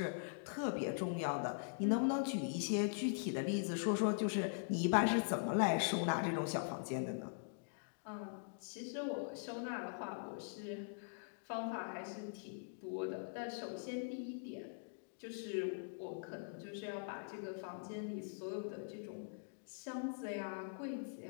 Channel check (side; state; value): right; silent; digital silence